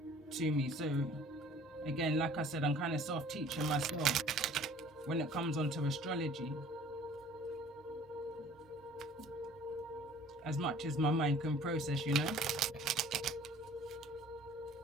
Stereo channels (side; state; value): both; normal; correlation 0.51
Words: to me, so again, like I said, I'm kind of self-teaching myself when it comes onto astrology, as much as my mind can process, you know.